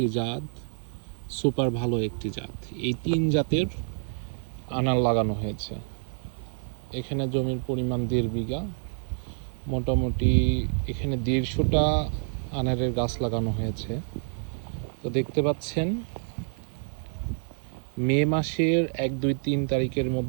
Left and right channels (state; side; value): silent; left; digital silence